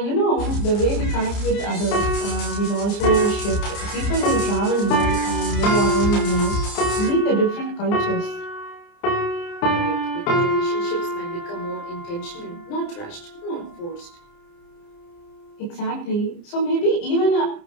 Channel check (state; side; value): late; right; 29 ms